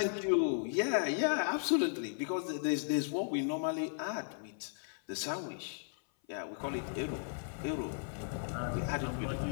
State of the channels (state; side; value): silent; right; 54 dB below the other